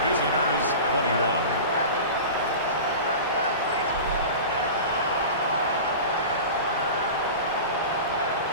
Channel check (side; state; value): both; inverted; correlation -0.32